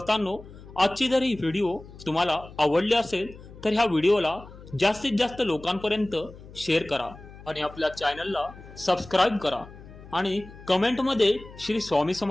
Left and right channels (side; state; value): left; noise; hum, 18 dB below the sound